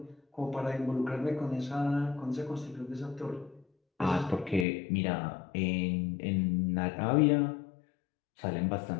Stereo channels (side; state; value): right; drops out; at 4.7 s